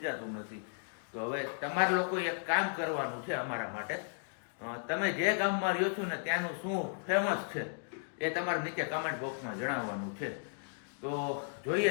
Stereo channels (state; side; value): silent; right; digital silence